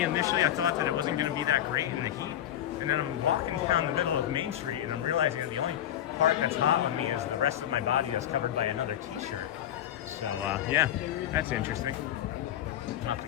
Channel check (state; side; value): quieter; right; 11.3 dB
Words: Initially, I thought that it wasn't going to be that great in the heat, and then I'm walking down the middle of Main Street, and I'm realizing that the only part that's hot on me is the rest of my body that's covered by another t-shirt. So yeah, that's interesting. I'll have to